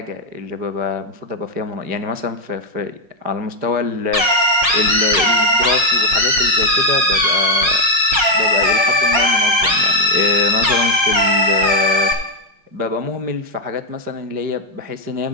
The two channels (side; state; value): left; late; 5.6 ms